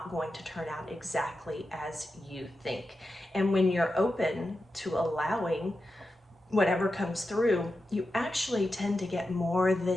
going to turn out exactly as you think. And when you're open to allowing whatever comes through, you actually tend to get more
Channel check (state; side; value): normal; both; correlation 0.90